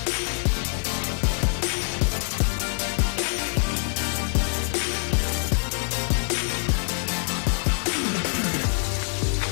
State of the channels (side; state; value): right; silent; 56 dB below the other